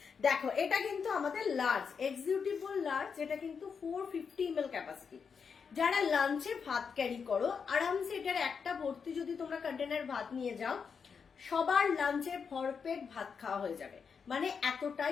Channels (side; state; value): right; quieter; 6.1 dB